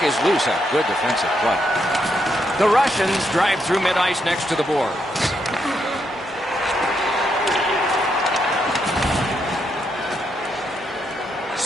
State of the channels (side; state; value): both; normal; correlation 0.79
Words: is loose. A good defensive play. The Russians drive through mid-ice next to the boards.